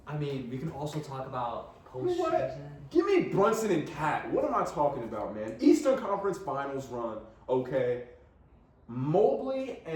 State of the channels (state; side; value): identical; both; correlation 1.00